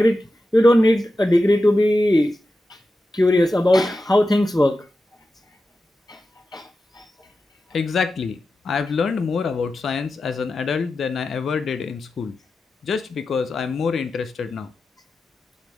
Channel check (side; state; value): both; normal; correlation 0.91